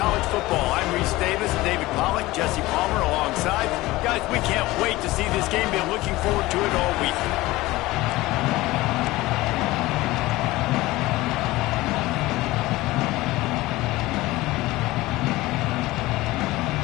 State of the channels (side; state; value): right; quieter; 19.0 dB